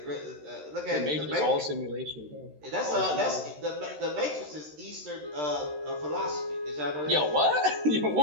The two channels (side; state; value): left; late; 13 ms